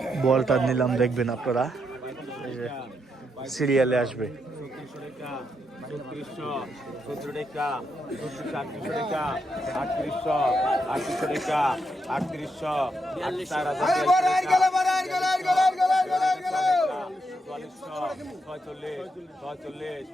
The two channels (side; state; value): both; normal; correlation 0.81